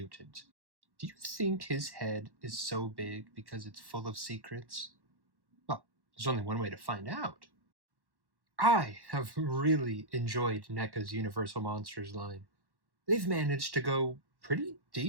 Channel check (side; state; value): left; late; 1.1 ms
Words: Do you think his head is so big because it's full of secrets? Well, there's only one way to find out. I have really enjoyed NECA's Universal Monsters line. They've managed to go pretty